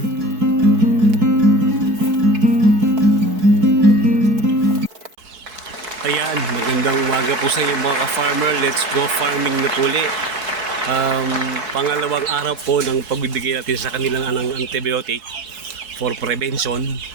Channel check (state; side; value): late; left; 4.6 ms